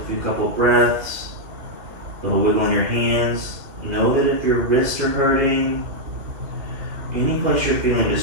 few couple breaths, a little wiggle in your hands. Know that if your wrists are hurting, any place you're feeling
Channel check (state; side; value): late; left; 2.8 ms